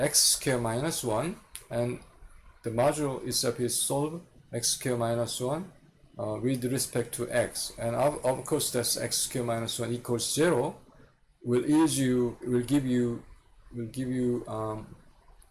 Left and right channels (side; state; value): both; identical; correlation 1.00